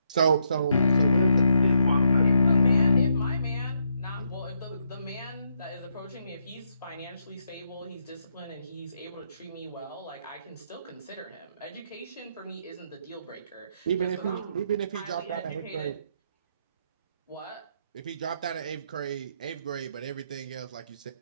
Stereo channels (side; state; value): both; inverted; correlation -0.76